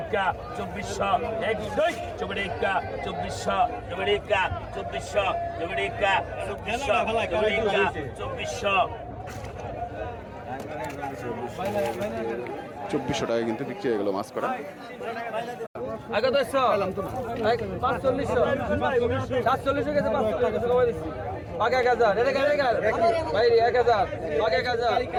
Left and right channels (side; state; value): both; identical; correlation 1.00